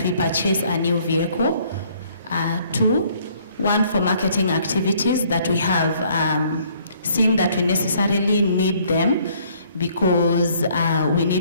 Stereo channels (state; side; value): inverted; both; correlation -0.62